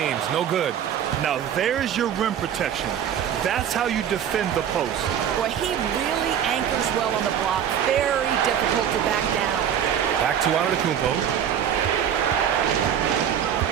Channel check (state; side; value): quieter; left; 9.2 dB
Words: no good. Now there's your rim protection. That's how you defend the post. Boy, he really anchors well on the block. Very difficult to back down. Back to Antetokounmpo.